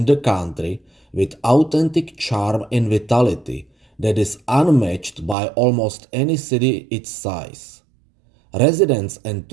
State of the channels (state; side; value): drops out; left; at 5.4 s